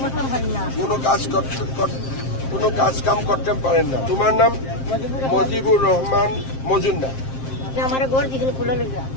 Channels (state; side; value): late; right; 7.6 ms